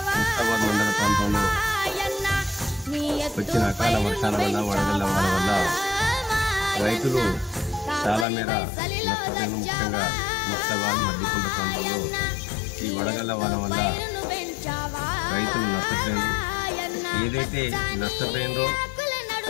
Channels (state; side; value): drops out; right; at 8.2 s